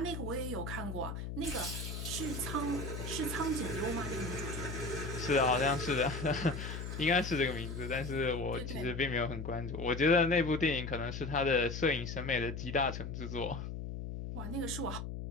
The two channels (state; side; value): noise; left; hum, 6 dB below the sound